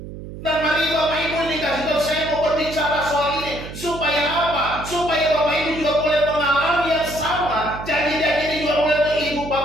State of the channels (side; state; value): right; noise; hum, 11 dB below the sound